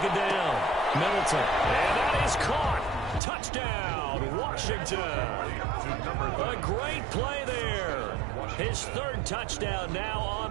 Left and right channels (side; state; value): left; drops out; at 3.2 s